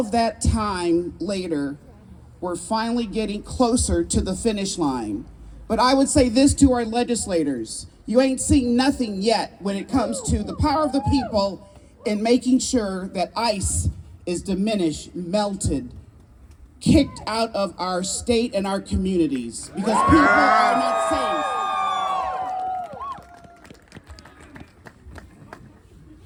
that time later, we're finally getting closer to the finish line. But I would say this to our legislators: you ain't seen nothing yet when it comes to the power of the people in making sure that ICE is diminished, melted, kicked out of our state and our communities, because people are not safe.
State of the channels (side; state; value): both; identical; correlation 1.00